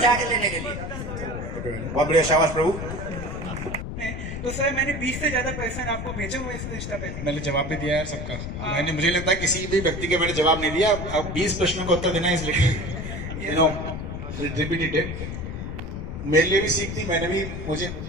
लेने के लिए। बहुत बढ़िया, शाबाश प्रभु। तो सर मैंने 20 से ज्यादा पर्सन आपको भेजे हुए इस इंस्टा पे। मैंने जवाब भी दिया है सबका। मैंने, मुझे लगता है किसी भी व्यक्ति के मैंने जवाब नहीं दिया। अब 20 प्रश्नों का उत्तर देना है, इसलिए रिपीटेड। मेरे लिए भी सीख थी, मैंने भी, मुझे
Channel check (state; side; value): noise; left; rumble, 6 dB below the sound